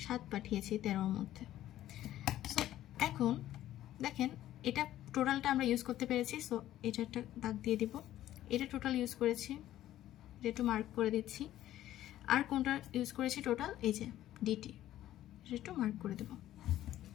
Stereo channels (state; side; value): quieter; right; 13.3 dB